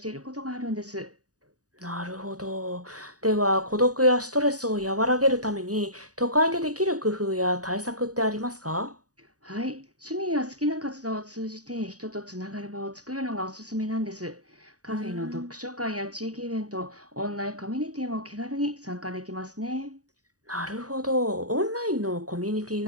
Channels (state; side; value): late; left; 0.67 ms